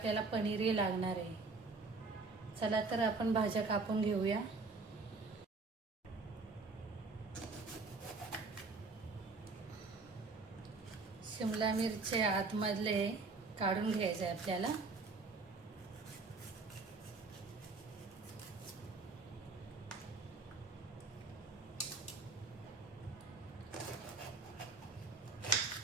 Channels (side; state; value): left; quieter; 3.8 dB